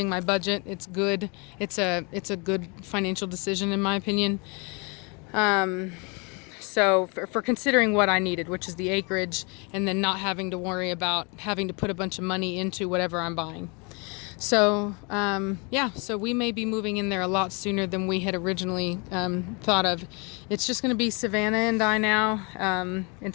my budget. It's good. It's a good financial decision in my opinion. So for considering what I needed, which is the acreage, and then not having to worry about having to put a bunch of money into whatever I'm buying. So yeah, so we may be moving in there a lot sooner than we had originally thought of. It's just going to be Savannah and I now,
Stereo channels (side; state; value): right; quieter; 31.5 dB